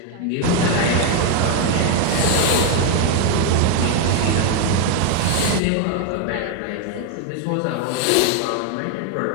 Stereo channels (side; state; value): both; different; correlation 0.01